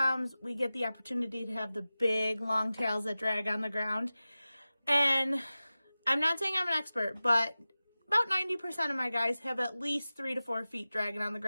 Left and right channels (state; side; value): inverted; both; correlation -0.96